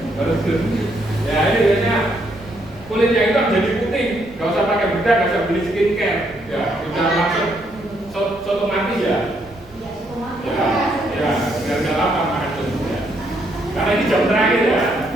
Ya ini biasanya kulitnya itu jadi putih, nggak usah pakai bedak, nggak usah beli skincare, ya sudah langsung otomatis ya. Ya, biar lama makan itu. Ya. Karena ini jam terakhir ya,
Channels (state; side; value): noise; right; rumble, 23 dB below the sound